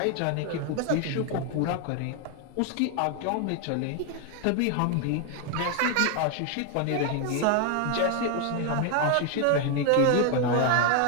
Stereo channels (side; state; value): both; different; correlation 0.01